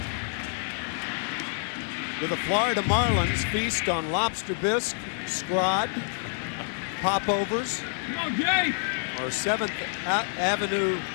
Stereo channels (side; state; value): right; silent; 60 dB below the other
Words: Do the Florida Marlins feast on lobster bisque, scrod, popovers, or 7th Avenue